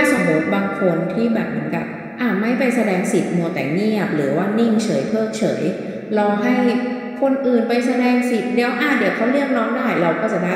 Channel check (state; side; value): identical; both; correlation 1.00